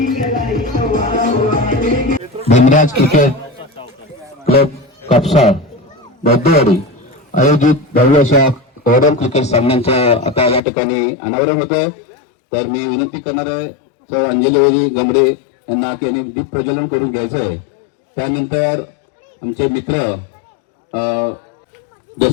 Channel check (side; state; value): right; drops out; at 10.6 s